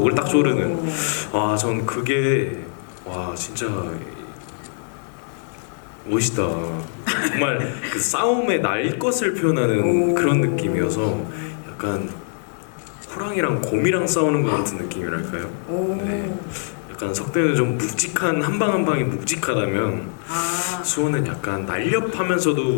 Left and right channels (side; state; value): right; silent; 64 dB below the other